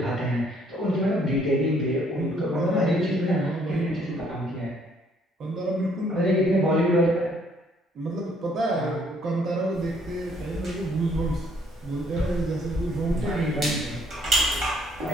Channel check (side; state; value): both; normal; correlation 0.65